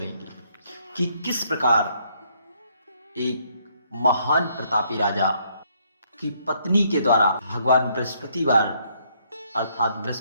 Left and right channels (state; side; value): inverted; both; correlation -0.69